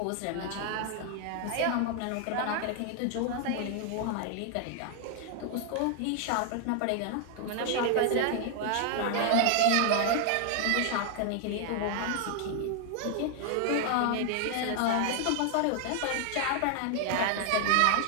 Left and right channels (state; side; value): different; both; correlation 0.00